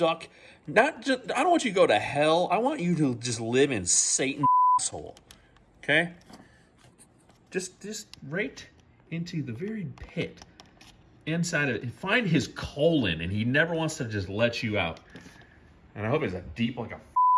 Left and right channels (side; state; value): both; identical; correlation 1.00